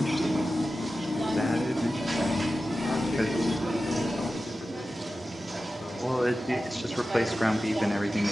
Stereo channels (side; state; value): both; normal; correlation 0.94